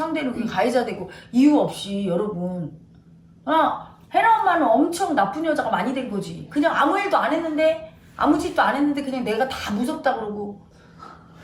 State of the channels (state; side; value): identical; both; correlation 1.00